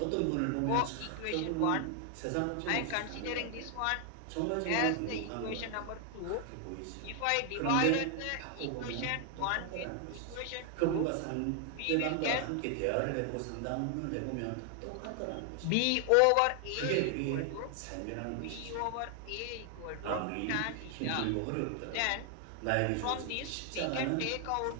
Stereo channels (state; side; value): different; both; correlation 0.00